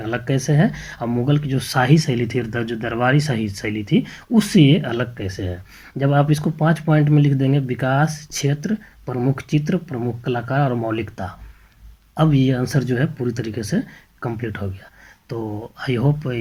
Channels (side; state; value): both; identical; correlation 1.00